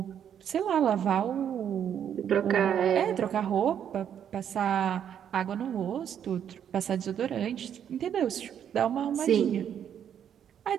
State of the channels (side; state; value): left; quieter; 9.0 dB